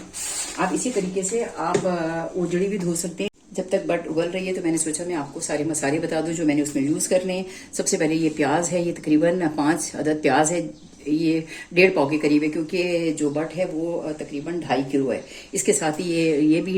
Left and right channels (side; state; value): both; identical; correlation 1.00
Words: आप इसी तरीके से आप ओजड़ी भी धो सकते हैं। जब तक बट उबल रही है तो मैंने सोचा मैं आपको सारे मसाले बता दूं जो मैंने उसमें यूज करने हैं। सबसे पहले ये प्याज है, ये तकरीबन 5 अदद प्याज है। ये 1.5 पाव के करीब है, क्योंकि जो बट है वो तकरीबन 2.5 किलो है। इसके साथ ही ये भी